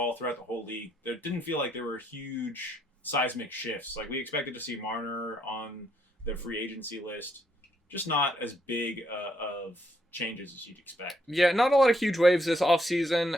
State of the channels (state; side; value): normal; both; correlation 0.73